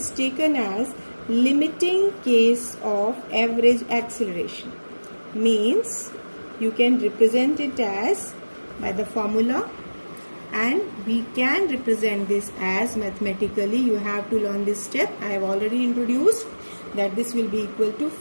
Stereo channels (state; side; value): inverted; both; correlation -1.00